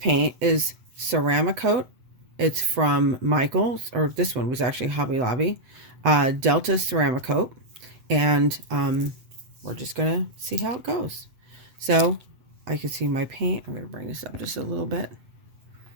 is ceramic coat. It's from Michael's, or this one was actually Hobby Lobby, Delta ceramic coat. And we're just going to see how it goes. So I can see my paint. I'm going to bring this up just a little bit.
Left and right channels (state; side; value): late; left; 7.8 ms